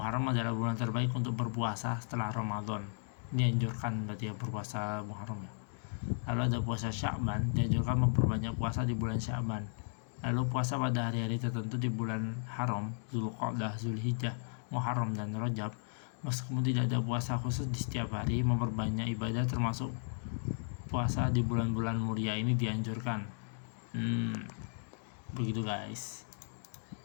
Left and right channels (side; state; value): right; silent; digital silence